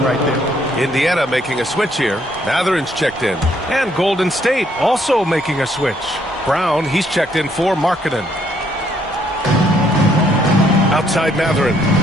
right there. Indiana making a switch here. Matherin's checked in. And Golden State also making a switch. Brown, he's checked in for Markkanen. Outside Mathurin.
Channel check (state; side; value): normal; both; correlation 0.69